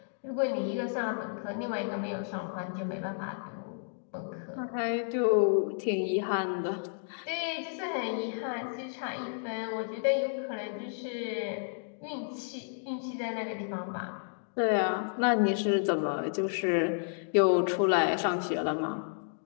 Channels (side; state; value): right; silent; digital silence